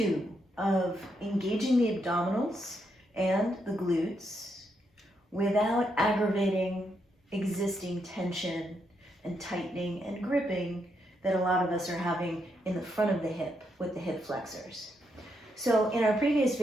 of engaging the abdominals and the glutes without aggravating existing tension and tightening and gripping that a lot of us are having in the front of the hip with the hip flexors. So in our previous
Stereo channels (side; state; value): both; normal; correlation 0.79